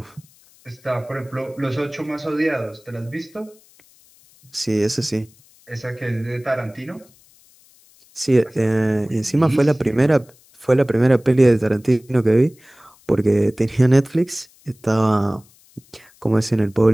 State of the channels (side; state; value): left; noise; hiss, 29 dB below the sound